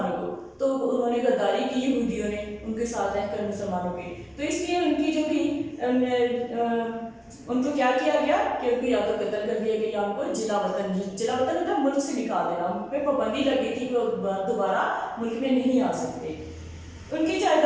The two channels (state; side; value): identical; both; correlation 1.00